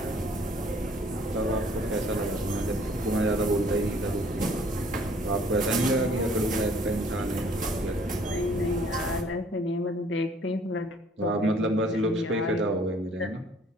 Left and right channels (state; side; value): normal; both; correlation 0.58